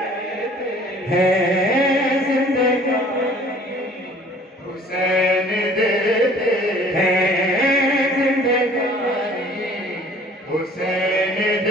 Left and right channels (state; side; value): normal; both; correlation 0.52